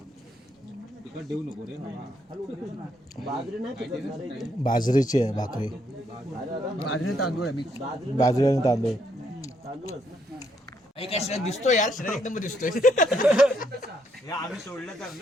तिकट देऊ नको रे. बाजरी नाही पिकवणार आहे इथे. बाजरीची आहे भाकरी. बाजरी तांदूळ आहे मी. बाजरी आणि तांदूळ. तांदूळच ना. एक शरीर दिसतोय यार, शरीर एकदम दिसतोय. आम्ही सोडलं तर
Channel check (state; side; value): normal; both; correlation 0.74